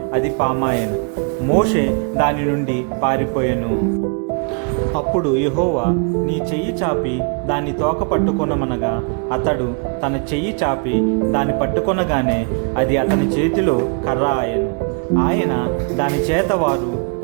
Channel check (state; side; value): quieter; left; 38.1 dB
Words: అది పామాయెను. మోషే దాని నుండి పారిపోయెను. అప్పుడు యెహోవా, నీ చెయ్యి చాపి దాన్ని తోక పట్టుకొనమనగా, అతడు తన చెయ్యి చాపి దాన్ని పట్టుకొనగానే అది అతని చేతిలో కర్ర ఆయెను. ఆయన దాని చేత వారు